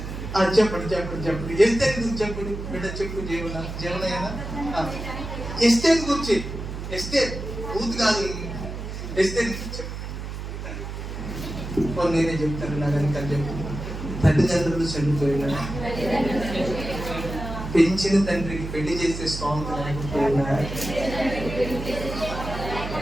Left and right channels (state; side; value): noise; right; hum, 7 dB below the sound